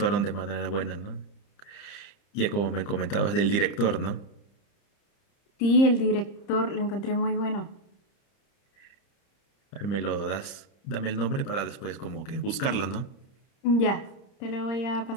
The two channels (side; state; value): right; late; 30 ms